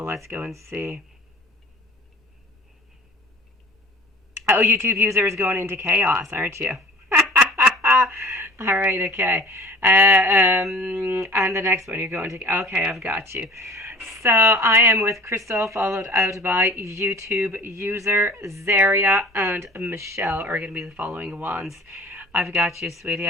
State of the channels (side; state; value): both; normal; correlation 0.45